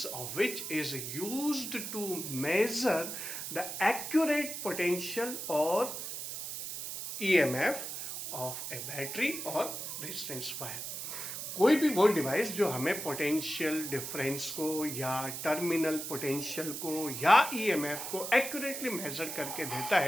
of which is used to measure the accurate potential और ईएमएफ ऑफ ए बैटरी और रेजिस्टेंस वायर। कोई भी वो डिवाइस जो हमें पोटेंशियल डिफरेंस को या टर्मिनल पोटेंशियल को या ईएमएफ को एक्यूरेटली मेजर करके देता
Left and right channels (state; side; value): noise; right; hiss, 6 dB below the sound